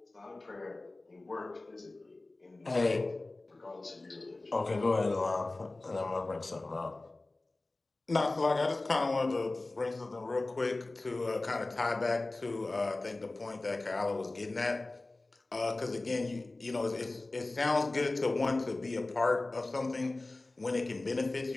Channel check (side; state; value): right; quieter; 3.0 dB